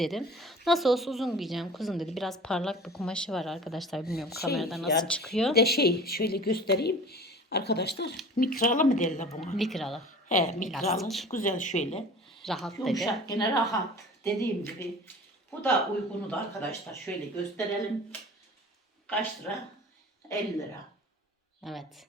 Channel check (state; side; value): normal; both; correlation 0.41